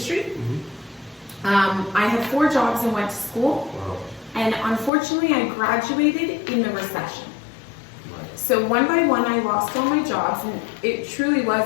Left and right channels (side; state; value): right; drops out; at 4.9 s